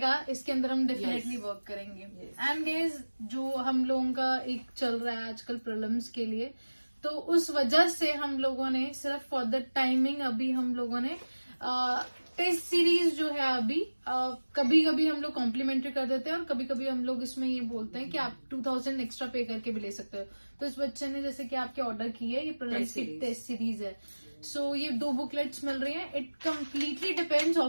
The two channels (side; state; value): both; inverted; correlation -1.00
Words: इसके अंदर हम डेफिनेटली वर्क करेंगे। एंड गाइस जो हम लोगों का एक चल रहा है आजकल प्रीलिम्स के लिए, तो उस वजह से हम लोगों ने सिर्फ फॉर द टाइमिंग अभी हम लोगों ने टेस्ट सीरीज जो है अभी कभी कभी हम लोग कॉम्प्लीमेंट्री कर देते हैं और कभी कभी हम लोग इसमें ये बोलते हैं कि आप 2000 एक्स्ट्रा पे करके भी ले सकते हो। तो इस बच्चे ने जैसे कि आपके ऑर्डर की है, ये प्रीलिम्स की टेस्ट सीरीज है। सो ये 2 बुकलेट्स मिल रही हैं। इट कम्प्लीटली डिपेंड्स,